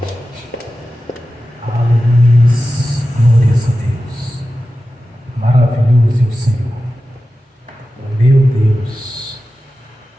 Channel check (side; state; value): both; normal; correlation 0.93